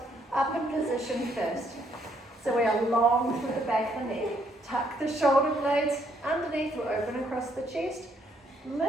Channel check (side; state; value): both; normal; correlation 0.70